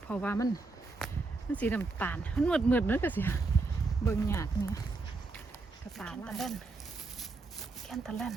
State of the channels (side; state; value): left; quieter; 3.7 dB